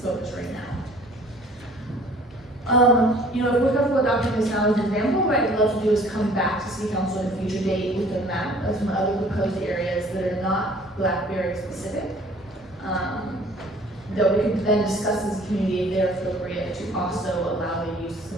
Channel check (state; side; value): normal; both; correlation 0.53